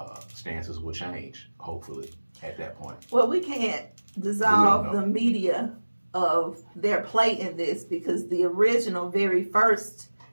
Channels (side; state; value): both; inverted; correlation -1.00